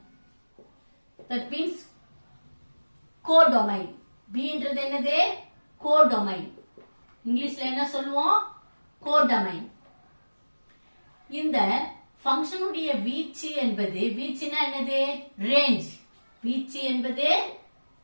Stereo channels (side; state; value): both; inverted; correlation -1.00